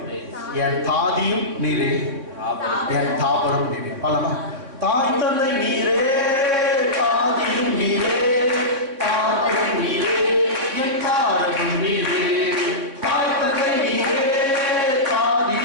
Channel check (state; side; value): late; left; 3.7 ms